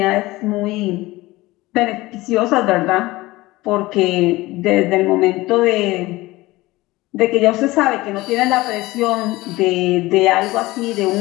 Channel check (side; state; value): right; quieter; 19.6 dB